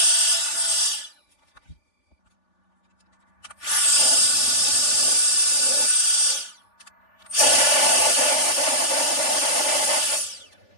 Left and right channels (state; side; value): late; right; 3.4 ms